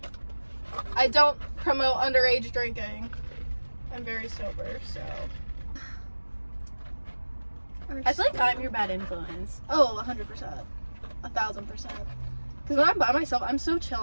I don't promote underage drinking. I'm very sober, so. I feel like I'm your bad influence. Oh, 100%. 1,000%. Because when I'm by myself, I'm so chill.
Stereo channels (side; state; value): both; inverted; correlation -1.00